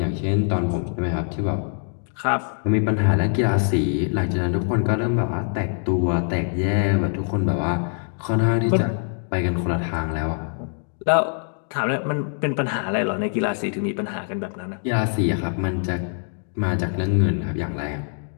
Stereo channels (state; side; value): silent; right; 60 dB below the other